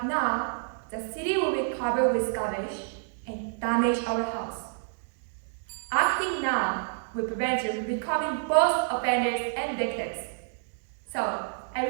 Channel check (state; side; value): silent; left; digital silence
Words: now, the city will be covered with garbage and damage our house. Acting now will prevent you from becoming both offenders and victims. So,